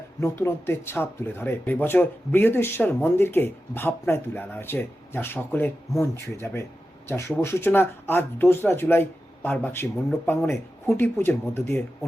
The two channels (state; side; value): normal; both; correlation 0.92